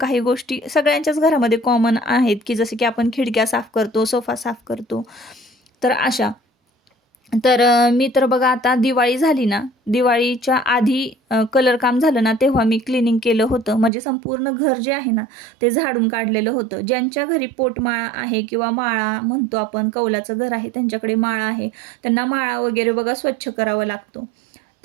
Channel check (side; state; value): left; drops out; at 13.9 s